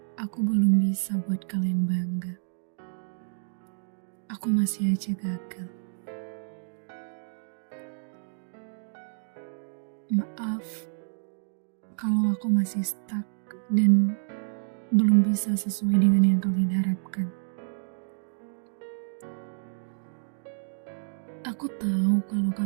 aku belum bisa buat kalian bangga. Aku masih aja gagal. Maaf kalau aku masih stuck dan belum bisa sesuai dengan yang kalian harapkan. Aku tahu kalau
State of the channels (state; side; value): silent; left; digital silence